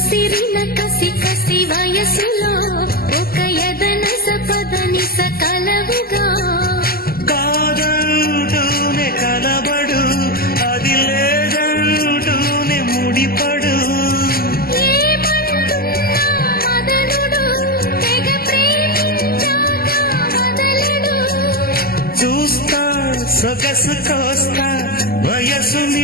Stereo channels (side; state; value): right; late; 0.44 ms